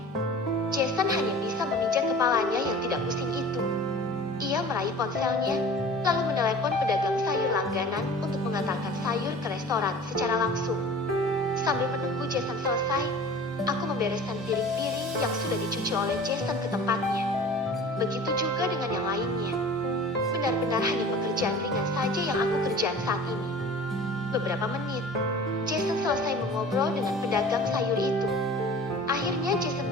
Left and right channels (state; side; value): normal; both; correlation 0.42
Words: Jason hanya bisa memijat kepalanya yang tidak pusing itu. Ia meraih ponselnya, lalu menelepon pedagang sayur langganan untuk mengantarkan sayur ke restoran secara langsung. Sambil menunggu Jason selesai, aku membereskan piring-piring yang sudah dicuci oleh Jason ke tempatnya. Begitu juga dengan yang lainnya. Benar-benar hanya pekerjaan ringan saja yang aku kerjakan saat ini. Beberapa menit, Jason selesai mengobrol dengan pedagang sayur itu. Akhirnya Jason